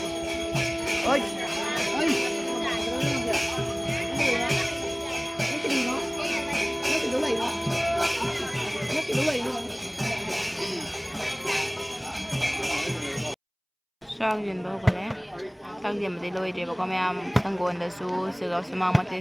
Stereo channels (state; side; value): identical; both; correlation 1.00